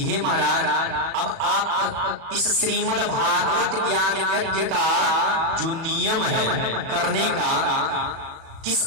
हे महाराज, अब आप इस श्रीमद् भागवत ज्ञान यज्ञ का जो नियम है करने का, किस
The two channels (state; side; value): late; left; 37 ms